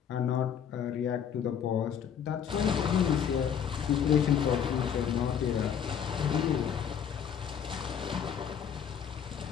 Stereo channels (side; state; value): right; quieter; 8.2 dB